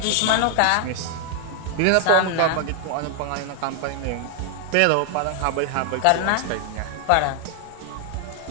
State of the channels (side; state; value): both; different; correlation 0.00